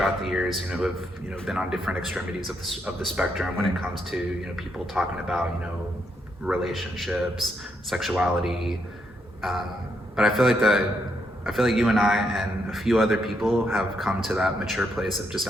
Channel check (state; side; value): normal; both; correlation 0.78